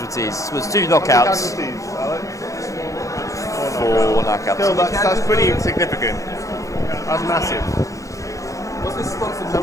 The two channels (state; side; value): late; right; 0.16 ms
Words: It was 2 knockouts. 4 knockouts. Still, that's pretty significant. That's massive. So